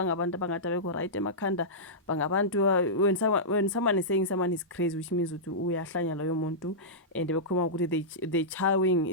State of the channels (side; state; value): both; normal; correlation -0.14